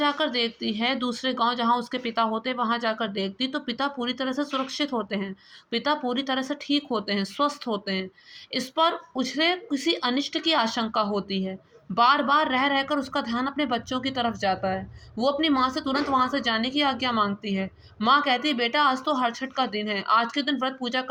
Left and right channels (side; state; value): both; identical; correlation 1.00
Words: देखती है, दूसरे गांव जहां उसके पिता होते, वहां जाकर देखती तो पिता पूरी तरह से सुरक्षित होते हैं। पिता पूरी तरह से ठीक होते हैं, स्वस्थ होते हैं। इस पर उसे किसी अनिष्ट की आशंका होती है। बार बार रह रहकर उसका ध्यान अपने बच्चों की तरफ जाता है। वो अपनी माँ से तुरंत वहां से जाने की आज्ञा मांगती है। माँ कहती है, बेटा आज तो हरछठ का दिन है, आज के दिन व्रत पूजा